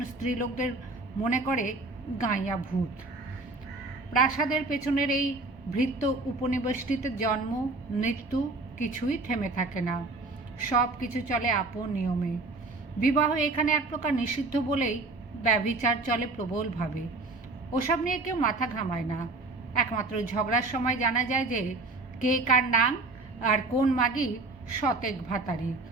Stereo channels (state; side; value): quieter; left; 3.4 dB